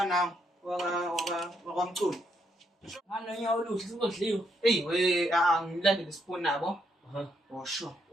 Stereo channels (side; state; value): both; normal; correlation 0.76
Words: wakwamculo. Nganonyawo oluhle sizodliwa. Hey we, ngilandele isipuni nabo. Oh sure.